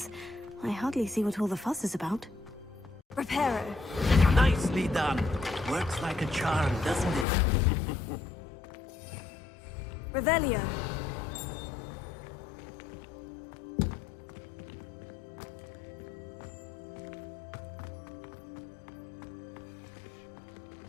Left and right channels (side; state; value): right; drops out; at 7.2 s